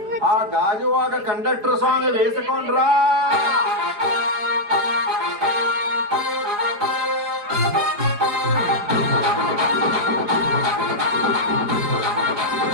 ఆ గాజువాక కండక్టర్ సాంగ్ వేసుకోండ్రా.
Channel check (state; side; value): late; left; 4.9 ms